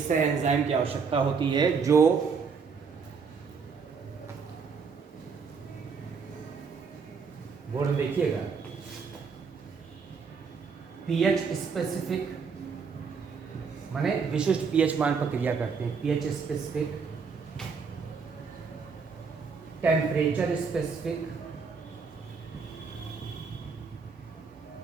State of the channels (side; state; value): left; quieter; 5.5 dB